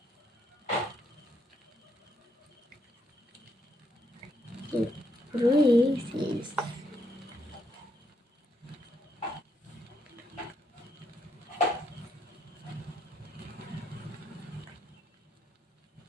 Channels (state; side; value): normal; both; correlation 0.75